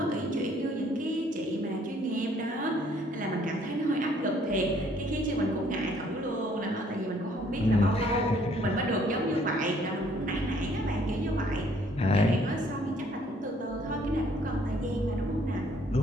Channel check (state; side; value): normal; both; correlation 0.62